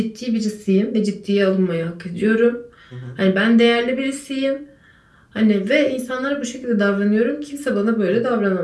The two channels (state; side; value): identical; both; correlation 1.00